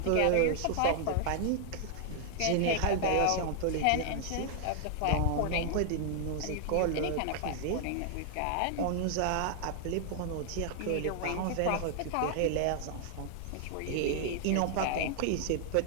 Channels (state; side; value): different; both; correlation 0.00